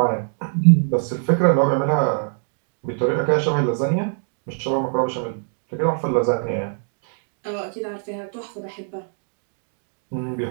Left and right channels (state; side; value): silent; left; 58 dB below the other